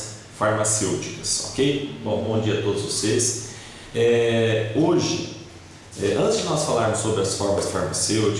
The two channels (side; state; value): both; identical; correlation 1.00